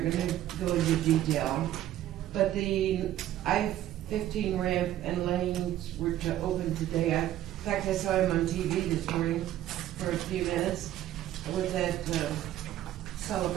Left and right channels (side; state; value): left; quieter; 13.0 dB